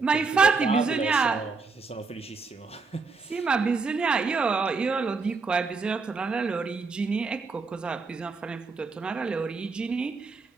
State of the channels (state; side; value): quieter; left; 4.4 dB